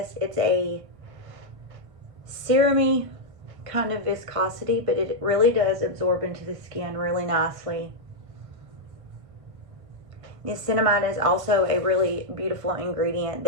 It's a serum-y kind of viscosity, but it really does absorb into the skin really nicely. Niacinamide is also a really beautiful ingredient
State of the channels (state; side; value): late; left; 1.5 ms